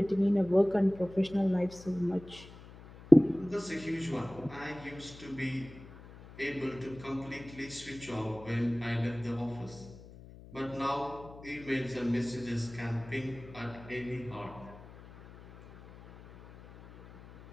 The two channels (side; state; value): left; noise; hum, 18 dB below the sound